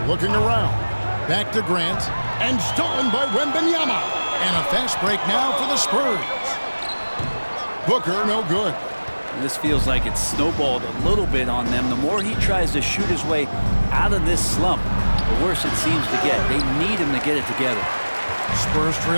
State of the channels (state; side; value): inverted; both; correlation -1.00